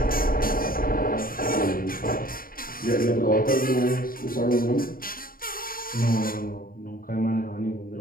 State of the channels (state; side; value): late; right; 0.42 ms